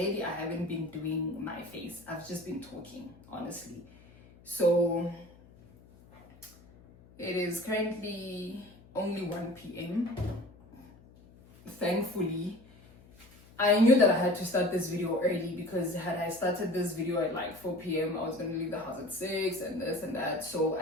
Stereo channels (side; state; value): left; noise; hum, 24 dB below the sound